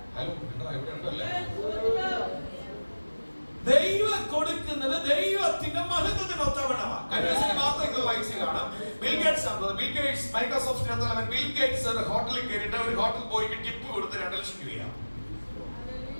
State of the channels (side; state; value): both; inverted; correlation -1.00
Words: ഹലോ, ഇവിടെ ഉണ്ടല്ലേ? ദൈവം കൊടുക്കുന്നത് ദൈവത്തിന്റെ മഹത്വത്തിനൊത്തവണ്ണമാണ്. കഴിഞ്ഞ വാർത്തകൾ വായിച്ചു കാണാം. Bill Gates Microsoft bill Gates ഒരു ഹോട്ടലിൽ കയറിയിട്ട് ഒരു ഹോട്ടൽ പോയിട്ട് ടിപ്പ് കൊടുത്ത് 2 ലക്ഷം രൂപയാണ്.